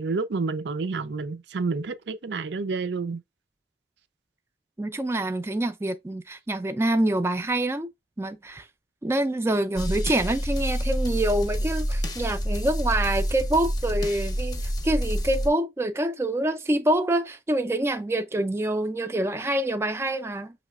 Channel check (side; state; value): both; normal; correlation 0.72